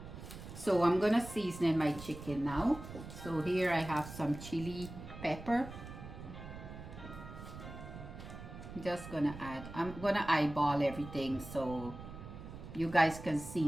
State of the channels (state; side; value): noise; right; rumble, 12 dB below the sound